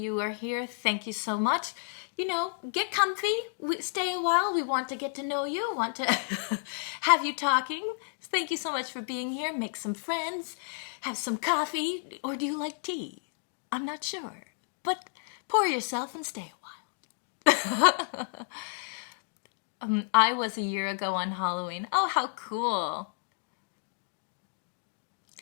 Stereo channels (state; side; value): silent; right; digital silence